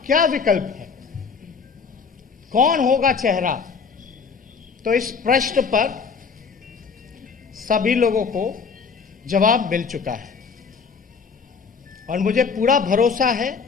क्या विकल्प है, कौन होगा चेहरा। तो इस प्रश्न पर सभी लोगों को जवाब मिल चुका है और मुझे पूरा भरोसा है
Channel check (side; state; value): right; quieter; 5.6 dB